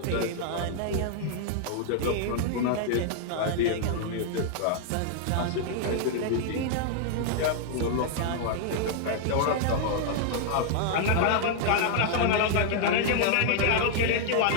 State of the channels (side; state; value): both; different; correlation -0.01